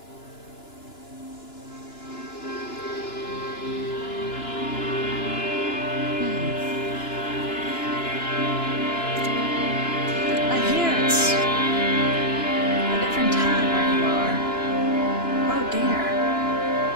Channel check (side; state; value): right; late; 2.9 ms